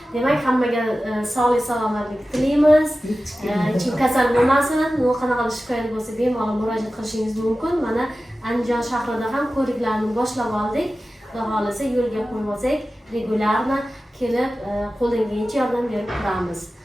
Demak, hammaga sog'lik salomatlik tilaymiz. Hech kim kasal bo'lmasin. Qanaqa shikoyat bo'lsa bemalol murojaat qilishingiz mumkin. Mana Andijon shahrida ham ko'riklarni boshlab oldik. Xudo xolasa yo'lga qo'yib olsak, regularno kelib qo'ldan kelgancha yordam berib turamiz.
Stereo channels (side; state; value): both; normal; correlation 0.95